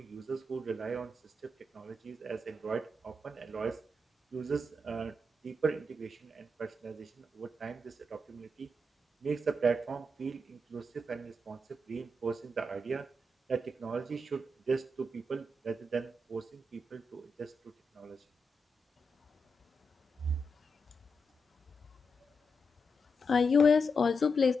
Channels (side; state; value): both; normal; correlation 0.84